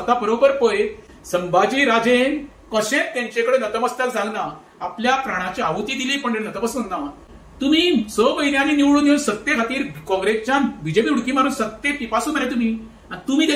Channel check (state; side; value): identical; both; correlation 1.00